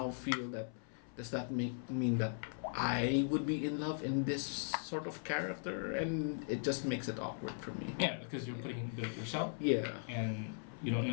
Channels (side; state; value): right; silent; 52 dB below the other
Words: feel that, does that mean that I would be in love in this sort of character? And it just makes it awkward for me. Yeah, because you're putting a bit of yourself. Yeah. And you don't